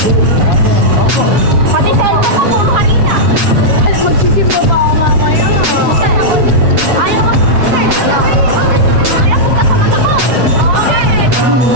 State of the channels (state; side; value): late; left; 8.1 ms